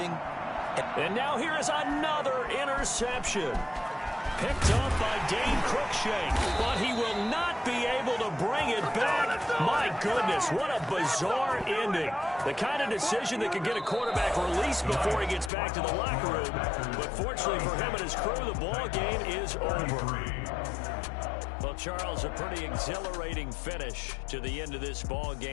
And now here is another interception. Picked up by Dane Cruikshank, but he will not be able to bring it back. My goodness, what a bizarre ending. The kind of decision that could get a quarterback released before he gets back to the locker room. But fortunately for him and his crew, the ball game is over. Well, Charles, a pretty exhilarating finish to the end of this ball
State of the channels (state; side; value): drops out; right; at 15.5 s